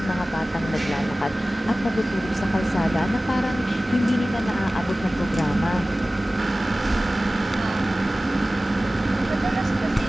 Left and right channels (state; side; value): normal; both; correlation 0.97